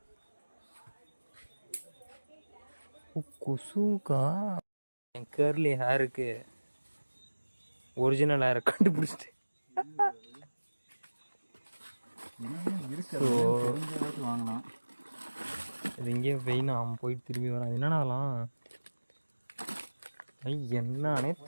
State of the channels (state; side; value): inverted; both; correlation -1.00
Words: கொசுக்கா என் கேர்லி ஹேருக்கு ஒரிஜினல் ஹேரை கண்டுபிடிச்சிட்டு வாங்கலாம். இது இங்கேயே வெயினா அவன் போயிட்டு திரும்பி வரான். என்னன்னா அதெல்லாம் என்னன்னே